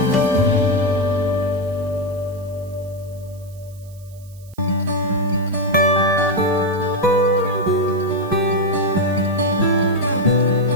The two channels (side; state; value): right; noise; hiss, 27 dB below the sound